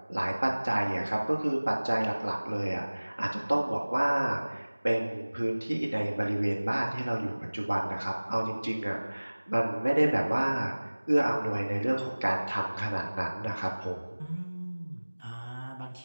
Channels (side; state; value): both; inverted; correlation -1.00